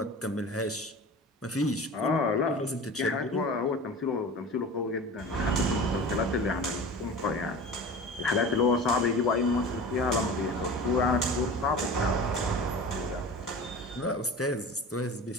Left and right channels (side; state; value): both; normal; correlation 0.35